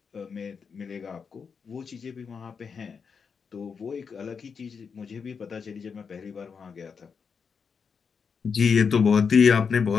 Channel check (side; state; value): right; quieter; 5.9 dB